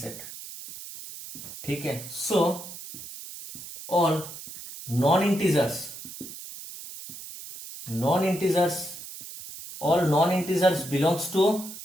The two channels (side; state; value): right; noise; hiss, 12 dB below the sound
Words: ठीक है। So all non integers belongs to